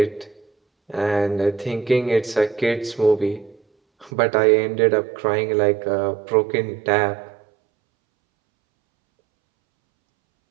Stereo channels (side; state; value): left; drops out; at 4.1 s